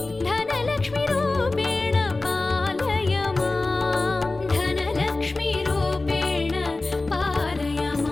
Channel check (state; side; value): quieter; right; 3.2 dB